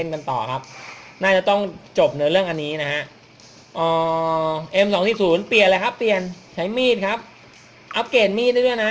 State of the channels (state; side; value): identical; both; correlation 1.00